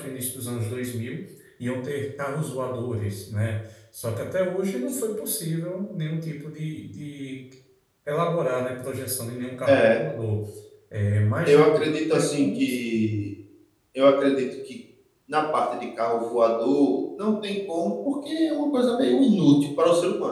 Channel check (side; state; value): both; identical; correlation 1.00